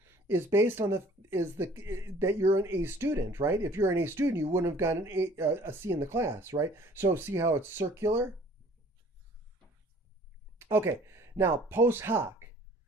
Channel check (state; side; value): normal; both; correlation 0.53